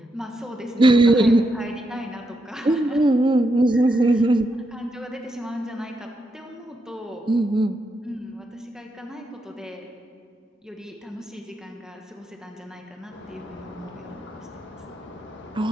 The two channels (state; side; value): normal; both; correlation 0.82